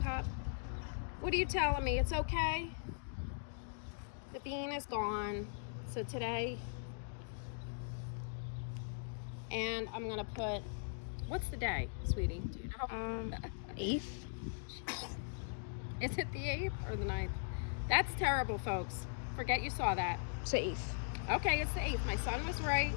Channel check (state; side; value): silent; right; digital silence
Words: What are you telling me? It's okay? The bean is gone. So today, and I'm gonna put, what's the day, sweetie? Do you know? 8th. Is it the 8th or the 9th? That's terrible, folks. Forget you saw that. It's the 8th. Okay, it's the 8th. My son was right.